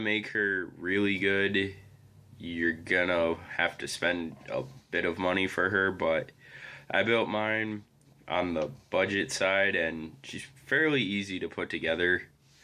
her really good, you're gonna have to spend a bit of money for her, but I built mine on the budget side and she's fairly easy to put together.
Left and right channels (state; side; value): identical; both; correlation 1.00